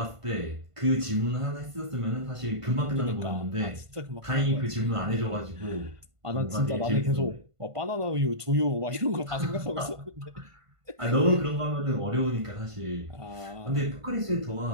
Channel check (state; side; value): late; left; 1.5 ms